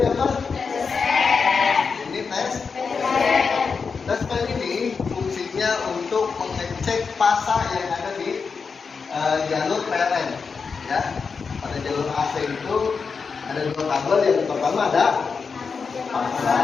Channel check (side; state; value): right; quieter; 5.3 dB